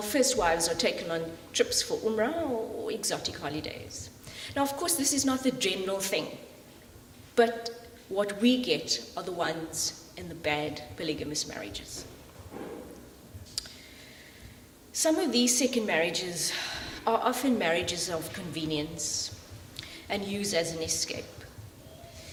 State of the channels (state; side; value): identical; both; correlation 1.00